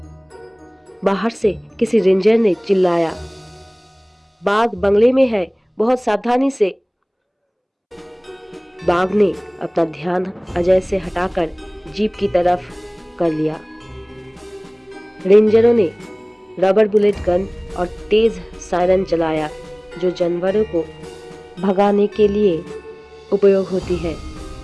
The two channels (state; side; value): identical; both; correlation 1.00